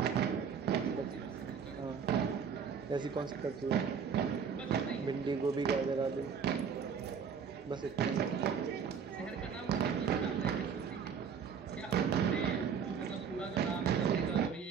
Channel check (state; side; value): quieter; left; 6.7 dB